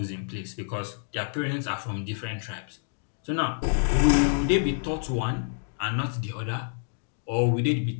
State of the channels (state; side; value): silent; right; digital silence